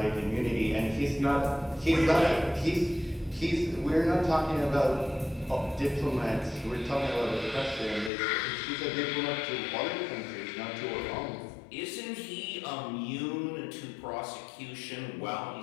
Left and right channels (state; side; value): drops out; right; at 8.1 s